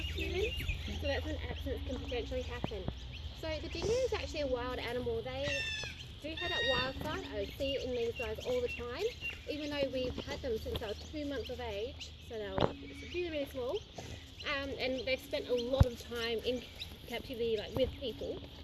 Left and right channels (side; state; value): both; identical; correlation 1.00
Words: humans. So that's when accidents can potentially happen. So the dingo is actually a wild animal. They do have that wild side. I see it in these guys all the time, even though we've had them since they were 2 months of age, so they were really, really small, and they've spent a lot of time in captivity, like with people,